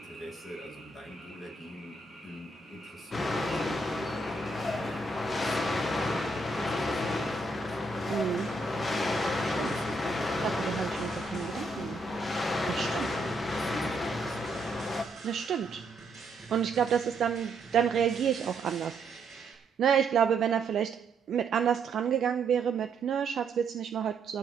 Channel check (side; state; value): left; quieter; 3.2 dB